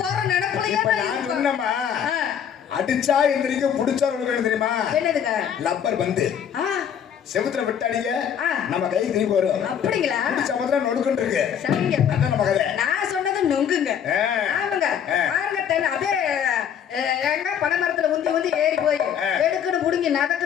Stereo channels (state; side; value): quieter; right; 8.5 dB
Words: போற நினைப்பலையே அடிச்சா எந்திரிக்க புடிச்சா தெரியுமா? என்னதுங்க? லப்பர் பந்து செவுத்துல விட்டாடிங்க நம்ம கை திருப்பி வரும். அப்படிங்களா? சமுத்திரம் நொடுக்குன்னு இருக்கு. சரிங்க, அதான் நம்ம கதை. நான் சொன்னது நொங்குங்க. ஆமாங்க, பாருங்க அப்படியே எங்க பனை மரத்துல உந்தி உந்தி ஏறி போய் எடுக்குன்னு புடுங்கி